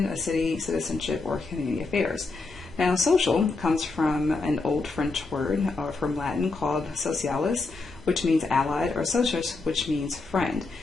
a city, citizenship, or community affairs. Now, social comes from an old French word, or from Latin, called socialis, which means allied, or socius, which means friend.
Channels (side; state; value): right; quieter; 3.7 dB